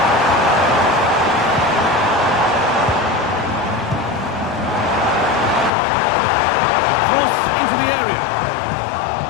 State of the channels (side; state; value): right; drops out; at 5.7 s